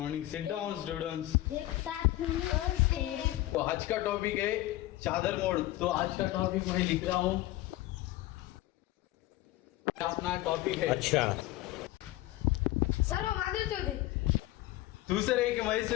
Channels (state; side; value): quieter; right; 16.6 dB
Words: sit down students. एक साथ नमस्ते। तो आज का टॉपिक है चादर मोड़। तो आज का टॉपिक मैं लिख रहा हूँ, अपना टॉपिक है। अच्छा सर वो मादर चौधरी। तू सर है कि